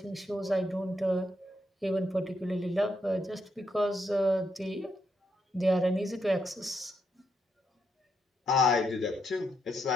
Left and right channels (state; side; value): normal; both; correlation 0.79